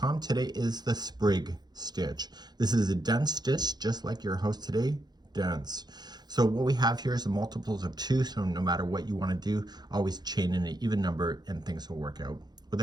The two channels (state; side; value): late; left; 0.20 ms